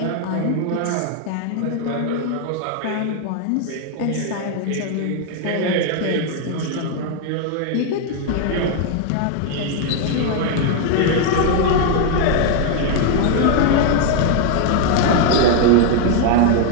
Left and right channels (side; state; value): both; different; correlation 0.00